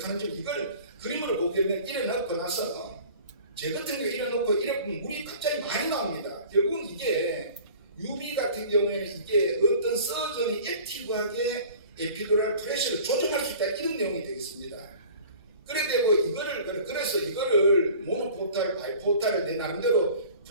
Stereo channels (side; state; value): both; inverted; correlation -0.45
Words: 이걸 그림으로 보게 되면 이래 넣고 나서 제 같은 경우 이래 놓고 이래 보면 물이 갑자기 많이 나옵니다. 결국은 이게 UV 같은 경우에는 이게 어떤 서전이 액티브하게 에피드랄 프레셔를 조정할 수 있다 이런 내용이 되겠습니다. 그래 되고 그래서 이거를 모노포탈, 바이포탈을 내 나름대로